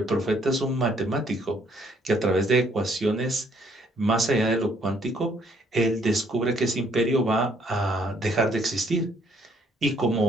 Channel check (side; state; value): both; normal; correlation 0.66